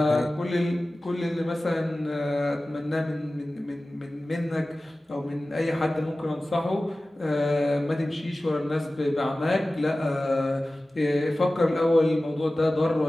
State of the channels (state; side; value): normal; both; correlation 0.96